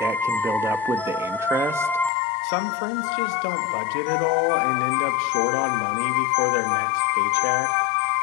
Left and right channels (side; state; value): right; drops out; at 2.1 s